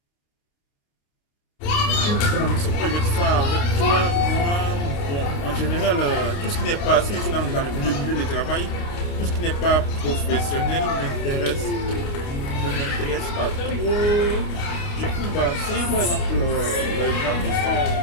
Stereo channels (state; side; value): late; right; 29 ms